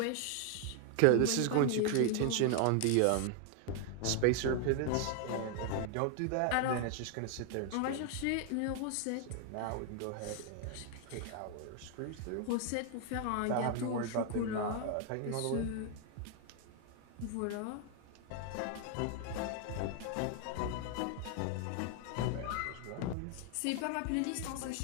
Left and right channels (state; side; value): different; both; correlation 0.00